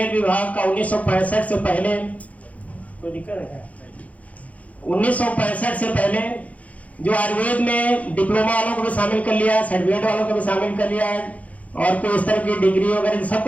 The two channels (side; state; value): right; late; 0.069 ms